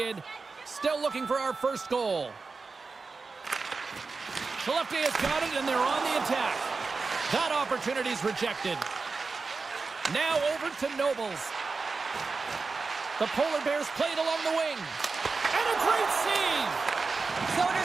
Still looking for our first goal. Skellefteå has got it, and they're on the attack. That opportunity's rejected. Now over to Nobles. The Polar Bears played along the wing. And a great save!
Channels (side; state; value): left; quieter; 4.3 dB